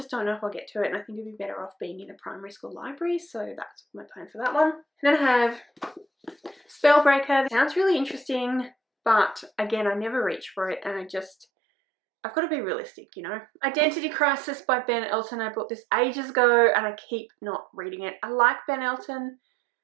don't know if I'll get to it. And I think it would be better off being in a primary school library. So that's my plan for that one. And then I have Spellbreaker. It sounds really interesting. But again, I never reach for it. And I've got to be realistic, you know. Identity Crisis by Ben Elton. I bought this ages ago and I keep not reading it. I like Ben Elton,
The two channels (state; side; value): drops out; left; at 11.5 s